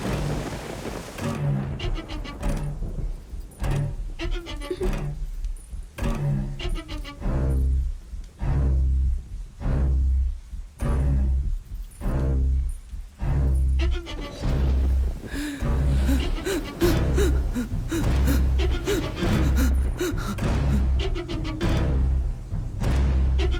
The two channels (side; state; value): both; identical; correlation 1.00